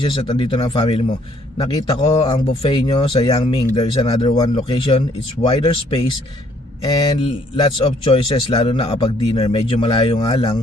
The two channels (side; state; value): both; normal; correlation 0.64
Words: at andito na ang family mo. Nakita ko ang buffet nyo sa Yangming. There is another one location. It's wider space and lots of choices, lalo na kapag dinner. Medyo malayo nga